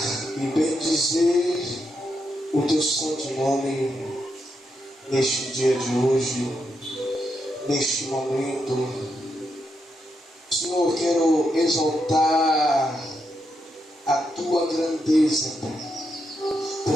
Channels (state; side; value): normal; both; correlation 0.82